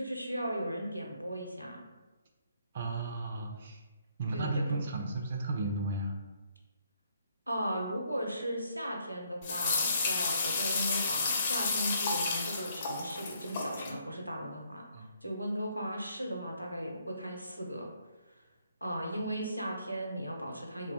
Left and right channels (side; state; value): both; inverted; correlation -0.69